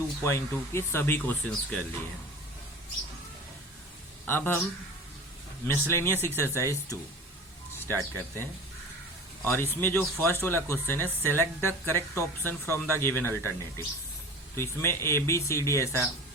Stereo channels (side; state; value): both; normal; correlation 0.37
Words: के सभी क्वेश्चंस कर लिए हैं। अब हम मिसलेनियस एक्सरसाइज 2 स्टार्ट करते हैं, और इसमें जो फर्स्ट वाला क्वेश्चन है, select the correct option from the given alternative. तो इसमें ABCD ऐसा